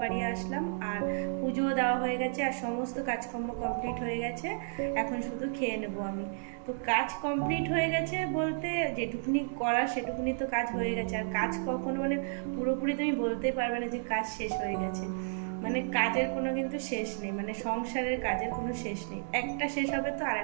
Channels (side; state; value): left; silent; digital silence